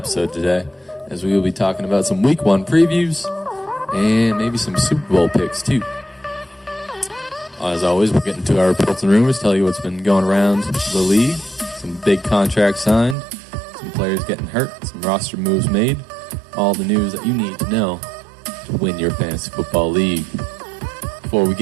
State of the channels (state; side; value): drops out; left; at 13.2 s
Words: today, as we will be talking about some Week 1 previews and maybe some Super Bowl picks, too. As always, we'll get into our reports and rumors, tell you what's been going around the league, some big contracts signed, some players getting hurt, some roster moves made, all the news that you need to know to win your fantasy football league. Before we